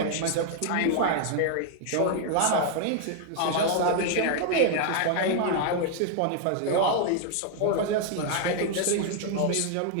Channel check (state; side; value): different; both; correlation 0.00